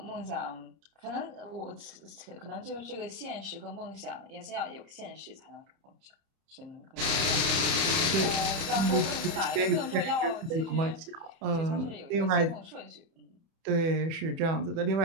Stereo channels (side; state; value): left; late; 30 ms